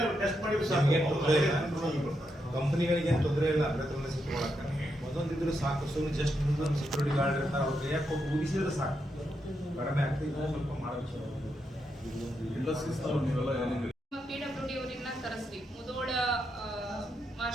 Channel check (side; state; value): both; normal; correlation 0.82